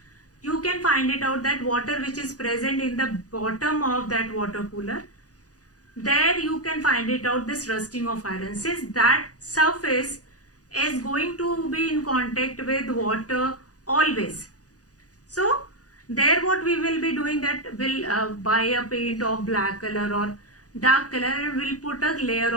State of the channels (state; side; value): late; right; 0.67 ms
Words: you can find it out that water which is present in the bottom of that water cooler, there you can find it out, this rusting of iron, since that surface is going to be in contact with water always. So there what we will be doing, that we'll buy a paint of black color or dark color and we'll put a layer